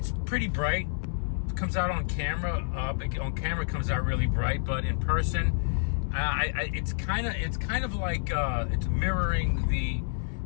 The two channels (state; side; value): silent; right; digital silence